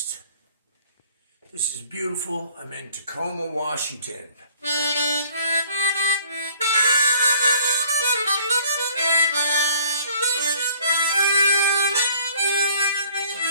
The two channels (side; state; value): both; inverted; correlation -0.56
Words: is beautiful. I'm in Tacoma, Washington.